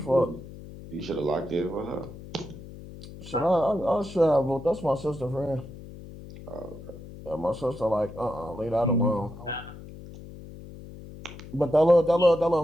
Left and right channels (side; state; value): left; noise; hum, 15 dB below the sound